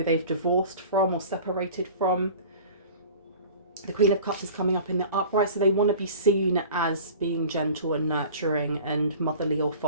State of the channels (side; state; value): both; inverted; correlation -0.42